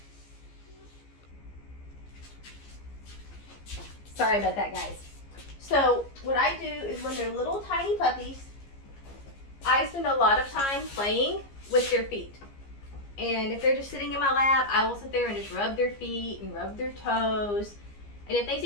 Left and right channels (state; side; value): late; right; 15 ms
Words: Sorry about that, guys. So what I do is when they're little tiny puppies, I spend a lot of time playing with their feet. And if they're just sitting in my lap, I will sit there and just rub their feet and rub their toes. And if they